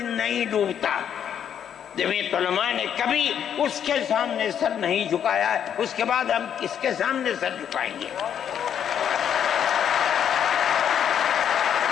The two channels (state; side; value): quieter; right; 8.9 dB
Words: نہیں ڈوبتا، جمعیت علماء نے کبھی اس کے سامنے سر نہیں جھکایا ہے، اس کے بعد ہم کس کے سامنے سر جھکائیں گے؟